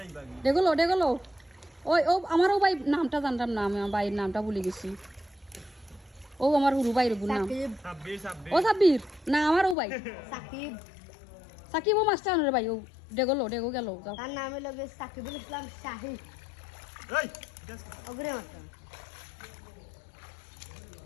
দেখলো ওই ও আমারও ভাই নামটা জানতাম না আমি আমার ভাইয়ের নামটা ভুলে গেছি ও আমার হুরু ভাইয়ের নাম সাকিব ও সাব্বির না আমার ও ভাই সাকিব সাকিব ও মাস্টার রে ভাই ও ডেগো গেল যাও তার নাম হলো সাকিবুল ইসলাম শাহী এই অগ্রে মাস্টার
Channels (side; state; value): right; drops out; at 9.8 s